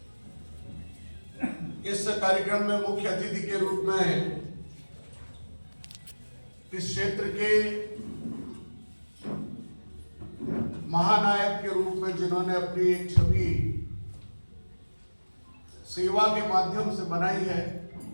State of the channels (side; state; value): both; inverted; correlation -1.00